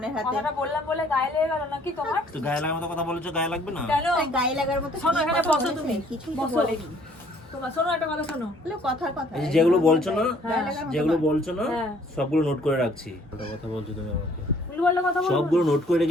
হাতে। কথাটা বললাম বলে গায়ে লেগে গেল নাকি তোমার? তো গায়ে লাগার মতো কথা বলেছো, গায়ে লাগবে না? কেন? এই গায়ে লাগার মতো শোনো, কি এখানে কথা বসো বলেছে? তুমি। কিছুই তো বসো। বলেনি। তোমার শোনো, একটা কথা শোনো। বলে কথার কথা। এই যে যেগুলো বলছো না, গায়ে লাগার মতো যেগুলো কথা। বলছো না হ্যাঁ। সবগুলো নোট করে রাখছি। ওটা কথা বলছো তুমি আমাকে, উল্টোপাল্টা কথা বলবো না। সবগুলো নোট করে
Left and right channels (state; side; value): normal; both; correlation 0.60